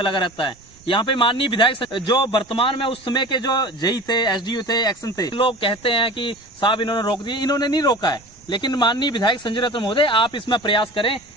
लगा रहता है? यहाँ पे माननीय विधायक जो वर्तमान में उस समय के जो जेई थे, एसडीओ थे, एक्शन थे, लोग कहते हैं कि साहब इन्होंने रोक दिए। इन्होंने नहीं रोका है, लेकिन माननीय विधायक संजय रतन महोदय, आप इसमें प्रयास करें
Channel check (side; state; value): right; noise; rumble, 28 dB below the sound